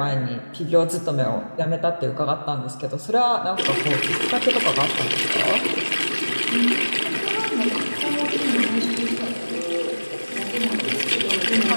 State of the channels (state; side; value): inverted; both; correlation -1.00